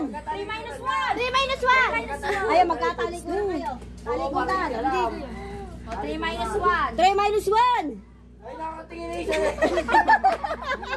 3 minus 1. 3 minus 1. Ayaw, magkatalikod kayo. Talikudan. O, 3 minus 1. 3 minus 1. Ay, nakatingin na isa.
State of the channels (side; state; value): both; identical; correlation 1.00